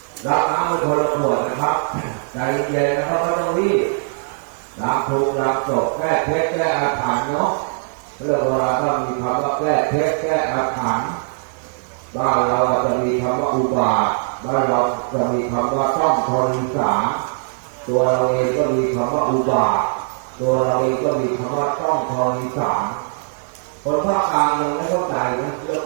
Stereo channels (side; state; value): left; silent; 56 dB below the other